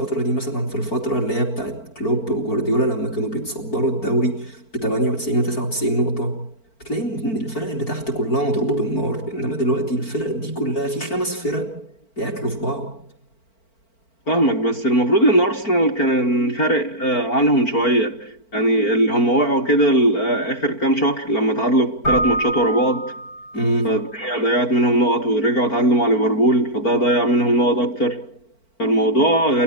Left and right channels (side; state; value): right; late; 4.5 ms